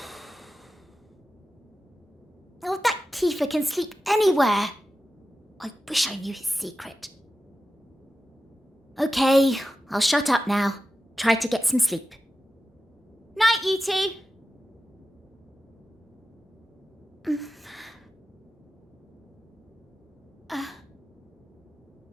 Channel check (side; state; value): both; normal; correlation 0.92